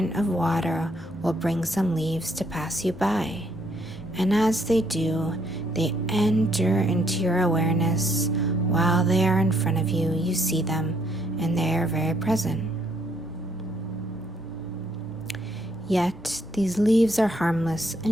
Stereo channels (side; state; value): both; normal; correlation 0.70